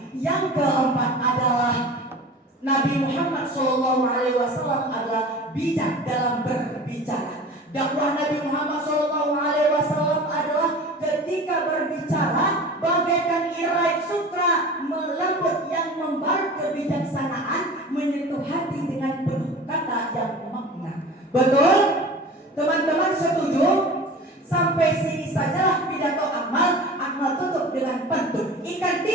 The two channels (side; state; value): both; normal; correlation 0.38